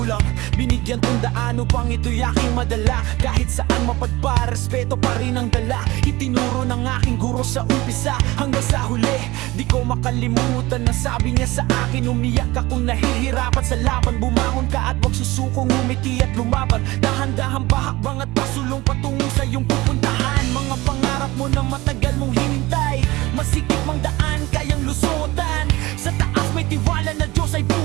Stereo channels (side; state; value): left; quieter; 20.0 dB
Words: Binigyan tundaan upang ito'y aking madala. Kahit saan mapadpa, respeto pa rin ang dala. Itinuro ng aking guro sa umpisa hanggang sa huli. Di ko makalimutan na sabi niya sa akin. Umiyak ka kung nahihirapan sa laban. Bumangon ka at wag susukong umiti at lumaban. Dahan-dahan pahakbang at pasulong patungo sa iyong pupuntahan. Mga pangarap mo na matagal mong hinintay, masikip mang daan, kayang lusutan. Sa taas may tiwala na Diyos ay